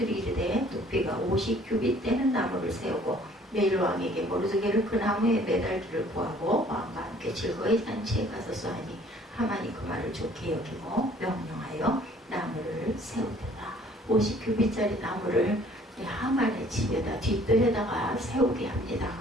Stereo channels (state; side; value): normal; both; correlation 0.56